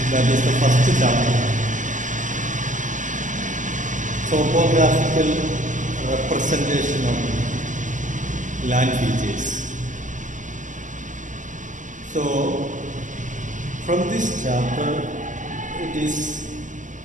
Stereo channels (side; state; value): left; late; 0.37 ms